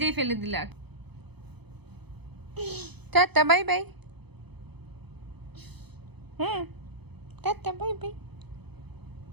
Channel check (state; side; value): late; left; 0.98 ms